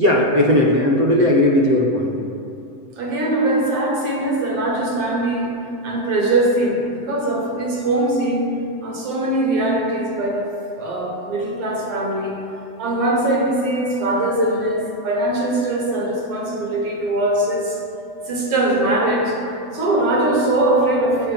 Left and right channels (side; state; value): left; late; 7.8 ms